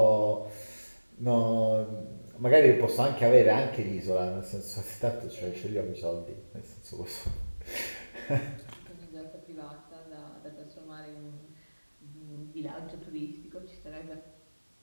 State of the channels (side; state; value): both; inverted; correlation -1.00